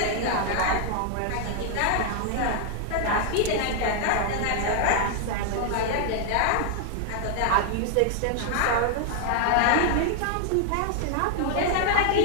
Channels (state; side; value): different; both; correlation 0.00